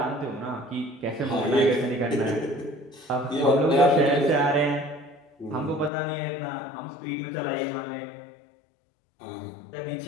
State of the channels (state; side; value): drops out; right; at 5.9 s